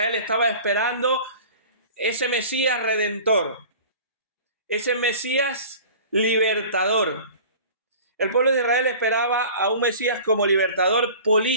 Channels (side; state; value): both; inverted; correlation -0.42